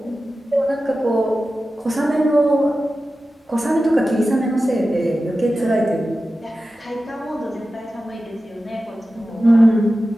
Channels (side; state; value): both; normal; correlation 0.94